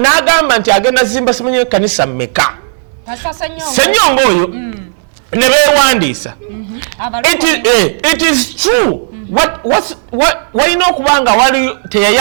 nti agenda zimba simanyi ekkanisa mmeka Ssenyonga oyo ne beewandiisa it is true walina okuba nga wali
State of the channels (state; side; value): silent; left; digital silence